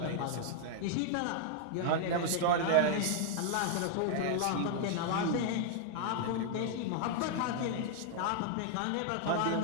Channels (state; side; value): different; both; correlation 0.00